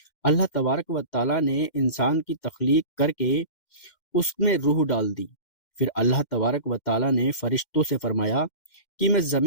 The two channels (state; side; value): late; right; 2.1 ms